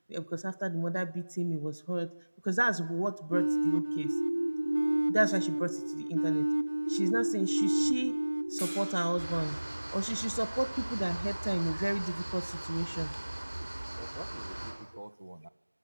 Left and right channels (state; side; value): inverted; both; correlation -1.00